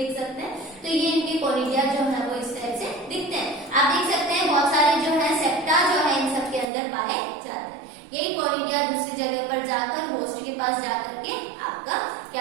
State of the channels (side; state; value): left; drops out; at 6.7 s